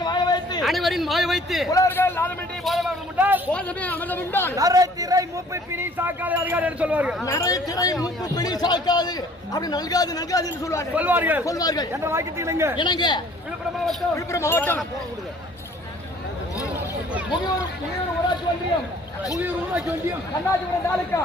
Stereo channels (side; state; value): both; normal; correlation 0.55